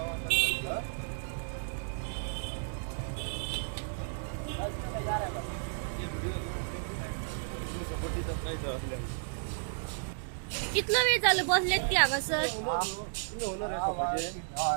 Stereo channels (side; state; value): left; silent; digital silence